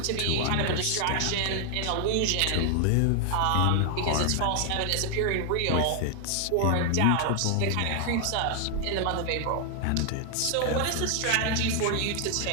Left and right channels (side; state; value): both; different; correlation 0.00